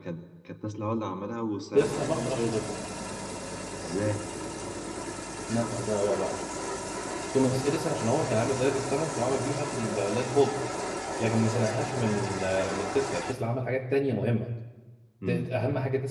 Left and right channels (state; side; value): identical; both; correlation 1.00